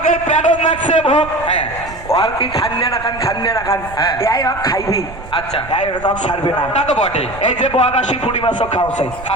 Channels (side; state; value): right; noise; rumble, 15 dB below the sound